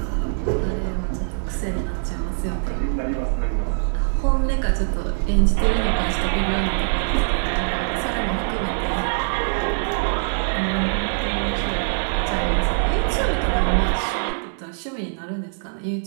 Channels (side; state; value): left; silent; 64 dB below the other